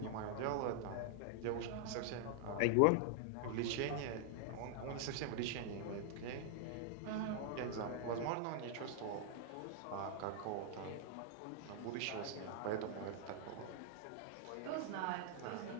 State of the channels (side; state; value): both; different; correlation 0.00